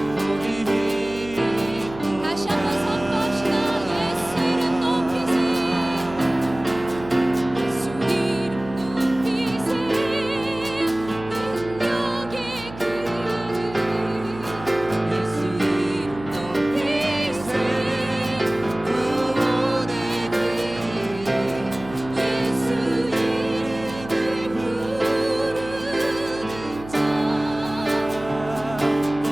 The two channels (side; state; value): right; noise; hum, 15 dB below the sound